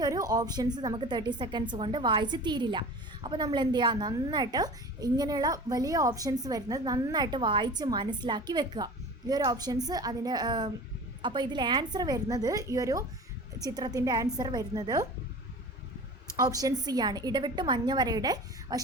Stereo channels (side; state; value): both; normal; correlation 0.38